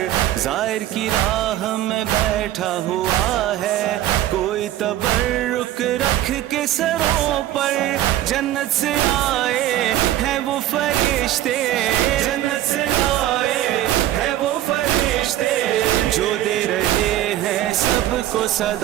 ظاہر کی راہ میں بیٹھا ہوا ہے, کوئی تبرک رکھ کے سروں پر. جنت سے آئے ہیں وہ فرشتے, جنت سے آئے ہیں وہ فرشتے, جو دے رہے ہیں سب کو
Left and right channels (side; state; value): left; quieter; 13.3 dB